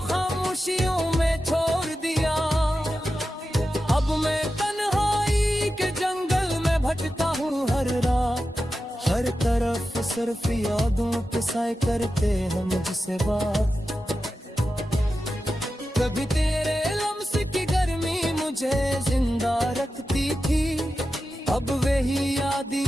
खामोशियों में छोड़ दिया। अब मैं तन्हाई के जंगल में भटका हूँ हर रात, हर तरफ सिर्फ यादों के साए करते हैं मुझसे बात। कभी तेरे लम्स की गर्मी मुझे जिंदा रखती थी, अब वही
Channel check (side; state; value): both; normal; correlation 0.92